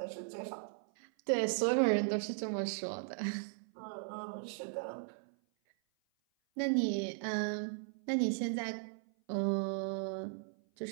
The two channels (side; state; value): left; silent; 53 dB below the other